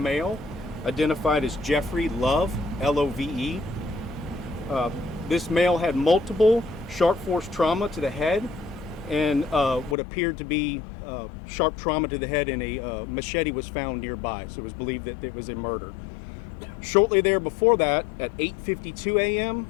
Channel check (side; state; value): right; drops out; at 10.0 s